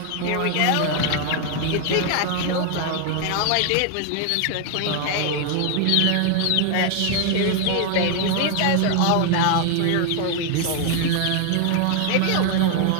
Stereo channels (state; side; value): different; both; correlation 0.00